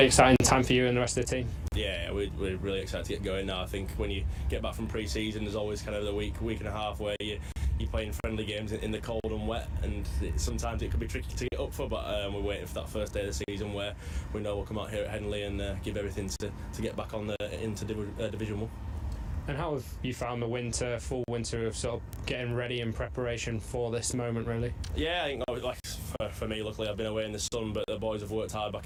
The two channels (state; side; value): identical; both; correlation 1.00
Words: exciting time for you and the rest of the team. Yeah, we're really excited to get going now. I think when you get back from pre-season, there's always kind of the week and a half where you're playing friendly games in the cold and wet, and sometimes it can be tricky to get up for, but we're waiting for that first day of the season where we know we'll come out here at Headingley and give everything to get back on into Division 1. And how have you found the full winter of sort of getting ready in preparation for this moment, really? Yeah, I think like for me, luckily I've been away in the sun, but the boys have worked hard